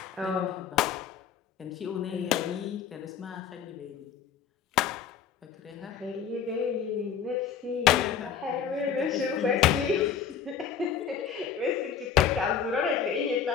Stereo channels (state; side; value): quieter; right; 7.7 dB